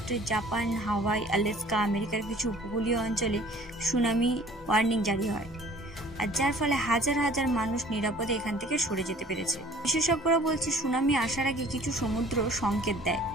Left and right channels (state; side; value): normal; both; correlation 0.51